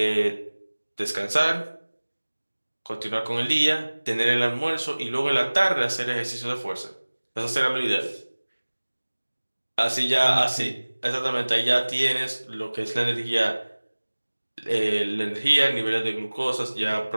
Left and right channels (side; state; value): both; inverted; correlation -1.00